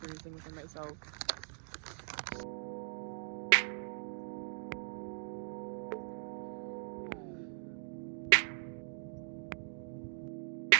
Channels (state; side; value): silent; left; digital silence